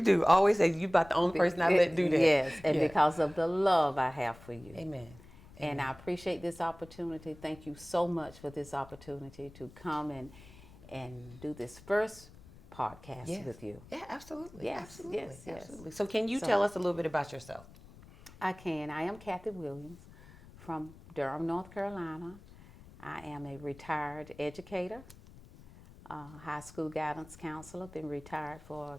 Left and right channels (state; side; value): noise; left; rumble, 20 dB below the sound